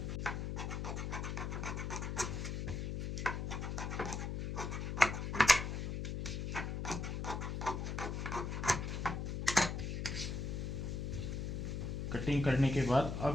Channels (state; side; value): noise; left; hum, 2 dB below the sound